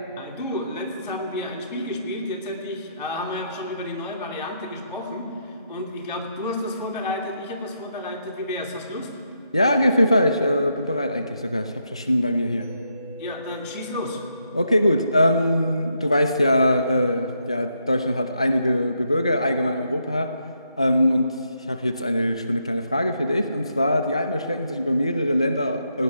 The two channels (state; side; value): inverted; both; correlation -0.78